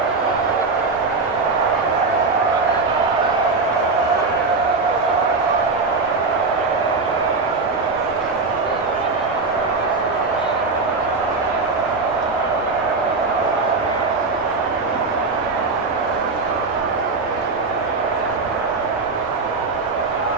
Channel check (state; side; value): quieter; left; 4.0 dB